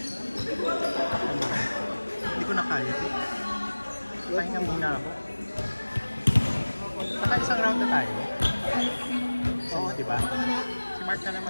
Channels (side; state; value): both; inverted; correlation -1.00